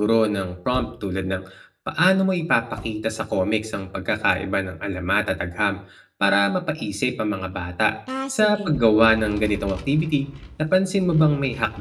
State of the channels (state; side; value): identical; both; correlation 1.00